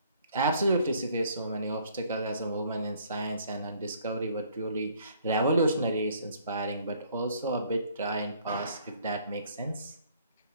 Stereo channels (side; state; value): both; inverted; correlation -0.61